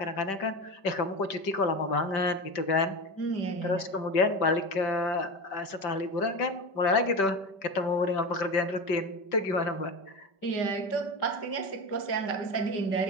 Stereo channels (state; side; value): late; right; 5.2 ms